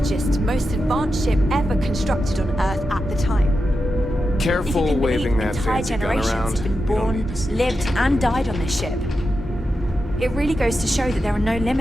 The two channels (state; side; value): normal; both; correlation 0.89